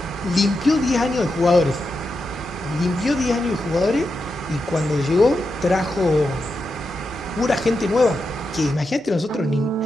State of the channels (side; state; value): both; normal; correlation 0.87